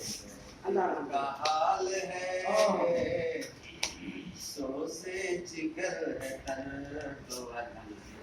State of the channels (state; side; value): identical; both; correlation 1.00